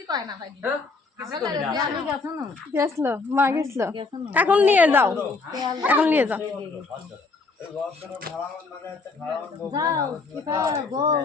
কয় না ভাই কিছু করবি না গেছলো মা গেছলো এখন নিয়ে যাও এখন নিয়ে যাও যাও কিতা বল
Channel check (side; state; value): right; quieter; 4.0 dB